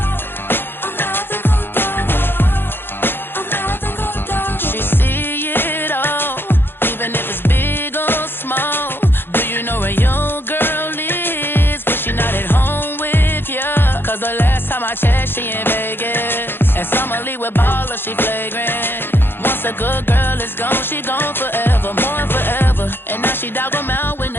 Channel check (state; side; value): late; right; 0.10 ms